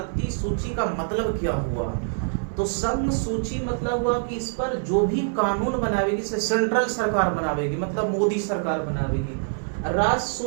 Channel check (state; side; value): silent; left; 62 dB below the other